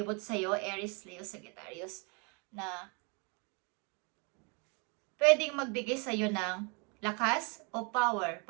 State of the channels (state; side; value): quieter; left; 33.6 dB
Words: sa'yo, Aries, Leo, Sagittarius, na pwedeng magbigay sa'yo ng lakas o power